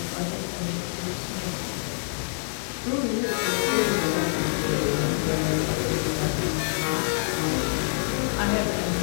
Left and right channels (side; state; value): right; silent; digital silence